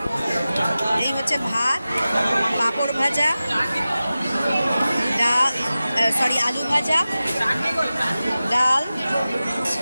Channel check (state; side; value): inverted; both; correlation -0.95